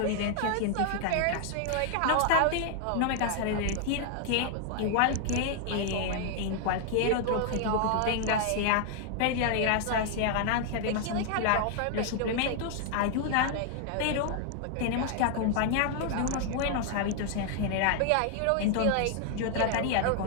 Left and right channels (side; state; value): both; different; correlation 0.00